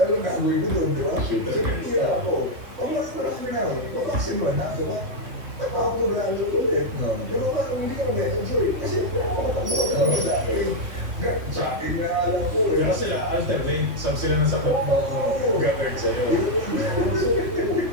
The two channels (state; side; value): late; left; 2.7 ms